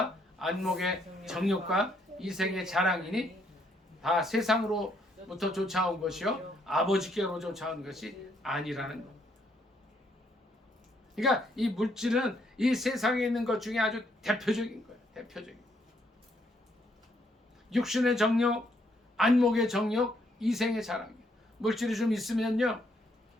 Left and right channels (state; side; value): normal; both; correlation 0.71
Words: 안목의 정욕과 이생의 자랑이니 다 세상으로부터 쫓아온 것이요 아버지께로 쫓아온 것이 아니라는 것. 그러니까 이 물질은 이 세상에 있는 것 중에 아주 대표적인 거예요. 대표적인. 육신의 정욕, 안목의 정욕, 이생의 자랑. 물질이 좀 있으면요,